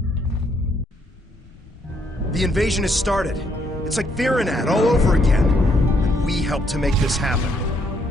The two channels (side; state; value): both; normal; correlation 0.71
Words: The invasion has started. It's like Virenat all over again. And we helped to make this happen.